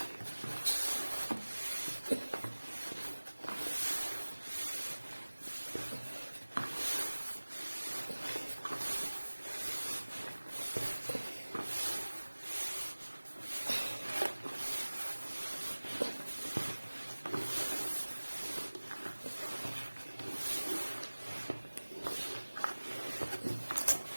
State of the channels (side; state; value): both; inverted; correlation -1.00